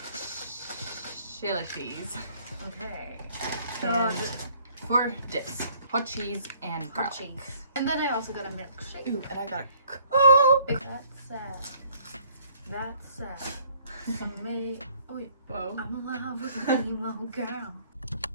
Chili cheese. Okay. And for dips, hot cheese and garlic. Cheese. And then I also got a milkshake. Ooh, and I got a Coke. That's me. Oh, wait. Whoa. I'm in love with a emo girl.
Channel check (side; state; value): both; inverted; correlation -0.60